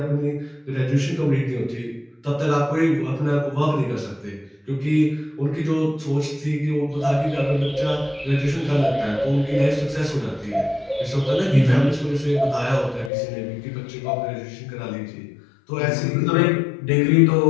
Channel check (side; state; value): right; drops out; at 13.1 s